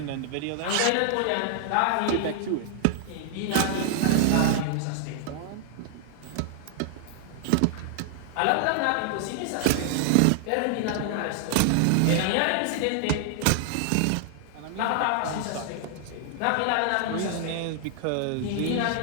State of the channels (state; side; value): different; both; correlation 0.00